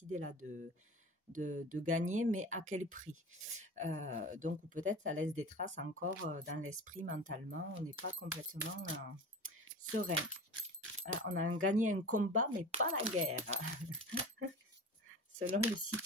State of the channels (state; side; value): normal; both; correlation 0.35